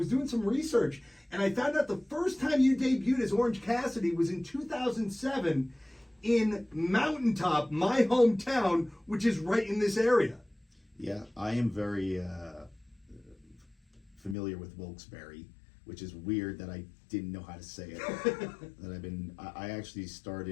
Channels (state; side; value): drops out; right; at 14.4 s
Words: doing some research, and I found out the first time you debuted as Orange Cassidy was in 2007 in Mountaintop, my hometown, which is right in this area. Yeah, I am very familiar with Wilkes-Barre, which is weird that I didn't know how to say it. I actually